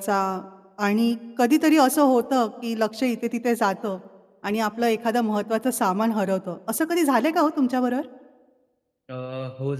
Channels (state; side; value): identical; both; correlation 1.00